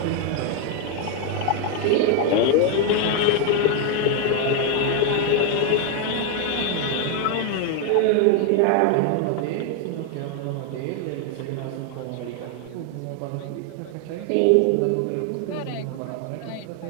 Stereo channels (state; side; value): different; both; correlation 0.01